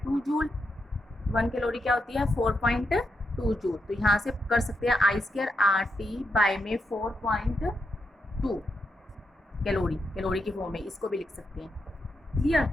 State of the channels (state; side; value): normal; both; correlation 0.84